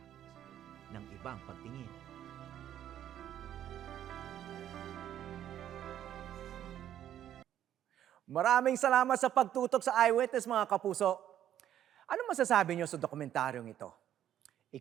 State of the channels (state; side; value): quieter; left; 11.0 dB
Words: ng ibang pagtingin. Maraming salamat sa pagtutok sa Eyewitness, mga kapuso. Ano masasabi niyo sa dokumentaryong ito?